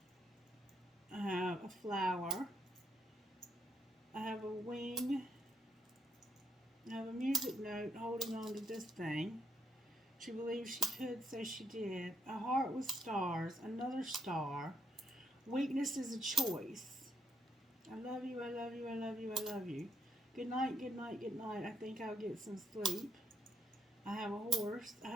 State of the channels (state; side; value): normal; both; correlation 0.75